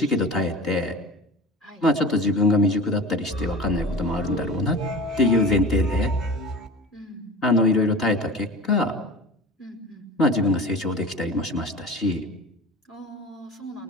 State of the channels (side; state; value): both; normal; correlation 0.34